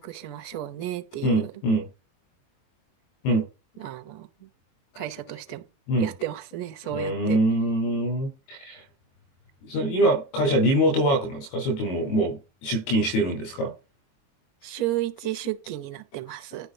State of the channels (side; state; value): right; late; 22 ms